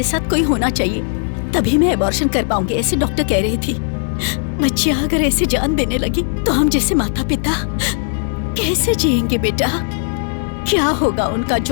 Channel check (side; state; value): right; silent; 68 dB below the other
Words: साथ कोई होना चाहिए तभी मैं एबॉर्शन कर पाऊंगी, ऐसे डॉक्टर कह रही थी। बच्चियां अगर ऐसे जान देने लगी तो हम जैसे माता पिता कैसे जिएंगे बेटा? क्या होगा उनका